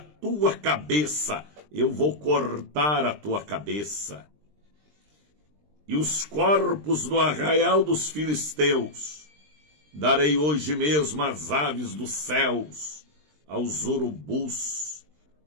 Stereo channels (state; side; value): late; left; 20 ms